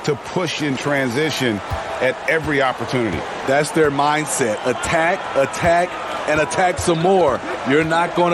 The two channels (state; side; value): identical; both; correlation 1.00